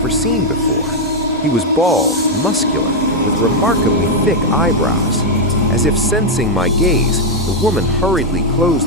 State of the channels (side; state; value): both; normal; correlation 0.00